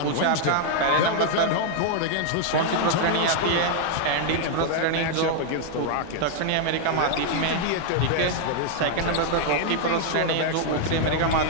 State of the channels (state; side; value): different; both; correlation 0.00